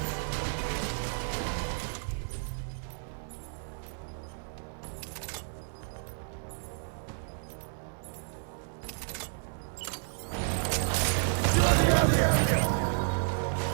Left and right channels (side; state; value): left; silent; 57 dB below the other